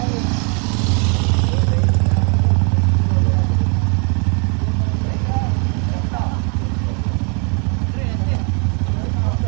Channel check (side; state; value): left; quieter; 36.4 dB